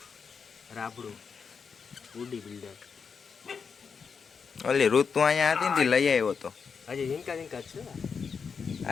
રાબડું ઉડી બિલ્ડર ઓલી ઋતુ અહીંયા હતી ને લઈ આવ્યો તો હજી ઝીંકા ઝીંકા છે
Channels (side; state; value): right; quieter; 5.9 dB